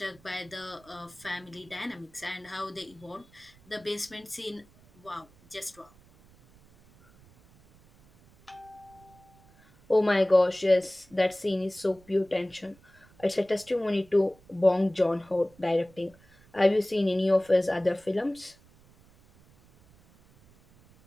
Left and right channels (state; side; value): noise; right; rumble, 27 dB below the sound